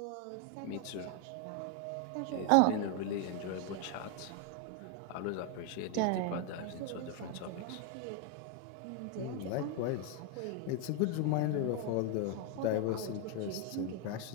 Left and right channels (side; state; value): both; different; correlation 0.01